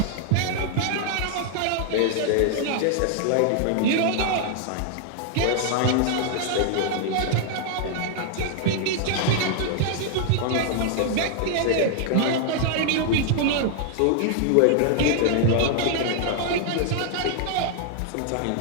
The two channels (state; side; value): different; both; correlation 0.00